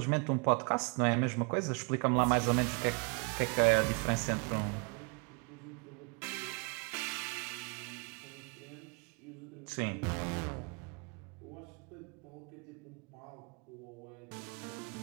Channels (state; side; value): quieter; left; 33.8 dB